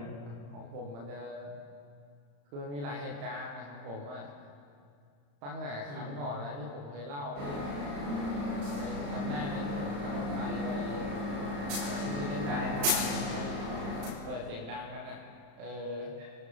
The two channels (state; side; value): late; left; 35 ms